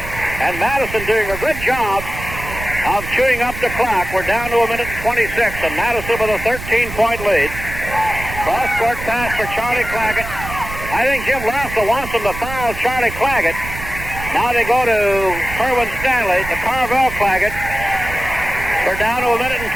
And Madison doing a good job of chewing up the clock. We're down to a minute and 26, and Madison with a 13-point lead. Cross-court pass for Charlie Claggett. I think Jim Lassell wants them to foul Charlie Claggett. Now they go to Kerwin Stanley, to Carvel Claggett. We're down to a minute and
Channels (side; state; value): right; noise; rumble, 10 dB below the sound